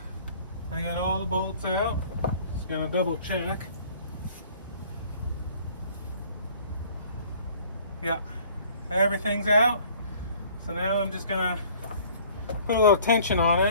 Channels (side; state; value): both; inverted; correlation -0.53